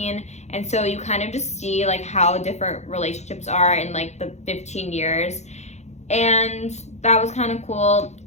and so you kind of just see like how different relationships are in like the 15 years, and that was kind of cool.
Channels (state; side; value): late; right; 0.33 ms